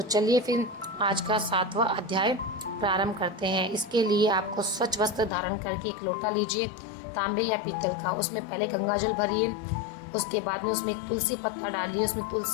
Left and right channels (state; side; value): drops out; right; at 5.3 s